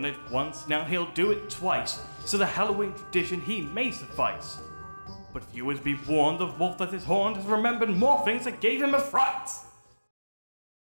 it once, now he'll do it twice, so the Halloween tradition he may suffice. But viewers be warned, the wolf that is horned has remembered more things that gave him a fright!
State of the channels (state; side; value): inverted; both; correlation -1.00